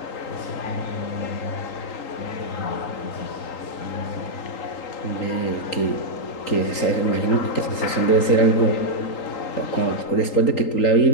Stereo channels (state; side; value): late; right; 3.8 ms